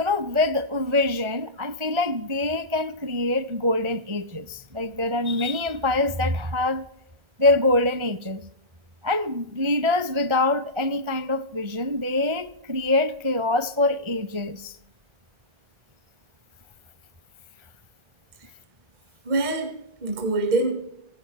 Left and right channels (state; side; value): late; left; 1.4 ms